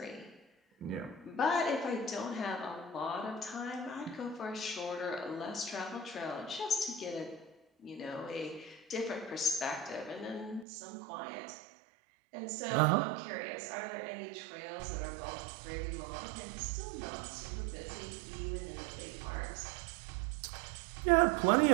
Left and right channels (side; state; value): left; drops out; at 10.7 s